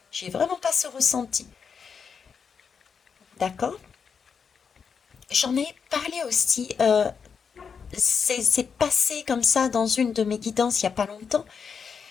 J'ai vraiment pas ce ressenti. D'accord? J'en ai parlé aussi. C'est passé comme ça dans une de mes guidances il n'y a pas longtemps.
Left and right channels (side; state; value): right; quieter; 6.3 dB